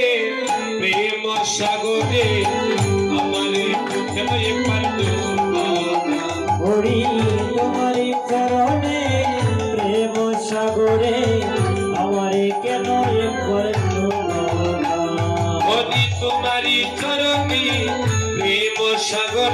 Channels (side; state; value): both; identical; correlation 1.00